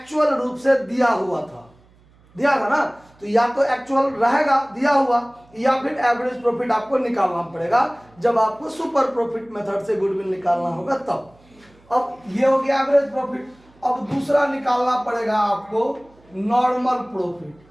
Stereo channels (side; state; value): right; noise; hum, 29 dB below the sound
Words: रूप से दिया हुआ था, दिया था ना, तो या तो एक्चुअल रहेगा दिया हुआ या फिर एवरेज प्रॉफिट आपको निकालना पड़ेगा जब आपको सुपर प्रॉफिट मेथड से गुडविल निकालना होगा तब। अब ये हो गया एवरेज प्रॉफिट। अब दूसरा निकालना पड़ेगा आपको नॉर्मल प्रॉफिट।